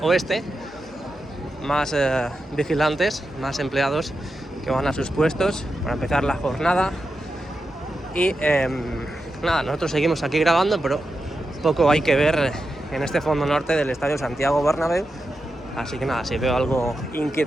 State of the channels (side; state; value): both; normal; correlation 0.89